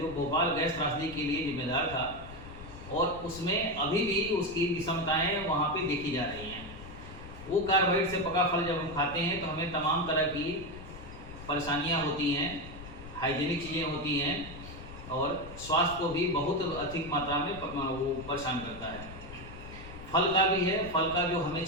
भोपाल गैस त्रासदी के लिए जिम्मेदार था और उसमें अभी भी उसकी विषमताएं वहाँ पे देखी जा रही हैं। वो कार्बाइड से पका फल जब हम खाते हैं तो हमें तमाम तरह की परेशानियाँ होती हैं, हाइजीनिक चीज़ें होती हैं और स्वास्थ्य को भी बहुत अधिक मात्रा में वो परेशान करता है। फल का भी है, फल का जो हमें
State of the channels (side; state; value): left; noise; rumble, 14 dB below the sound